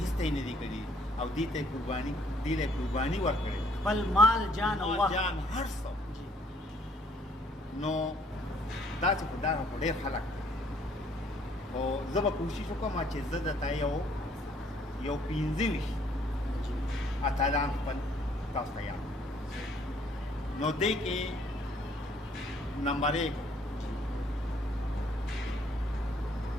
ته یې نه دي کړي او دې ته یې قرباني ورکړې خپل مال جان او وخت جان هر څه نو داسې خو دا خو ډېر خلک خو زه به کوشش وکړم چې زه درته یو 15 اتلان خپل تاسو ته یاد نو دې کې نمبر 1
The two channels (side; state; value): both; normal; correlation 0.63